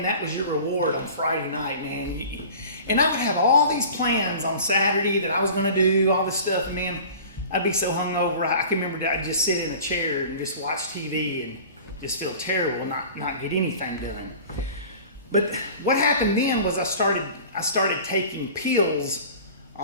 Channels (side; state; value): both; inverted; correlation -0.41